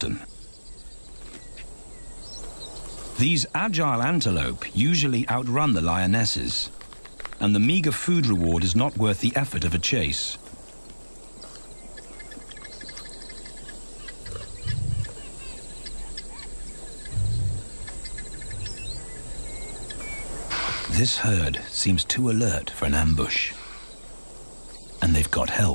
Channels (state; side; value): inverted; both; correlation -1.00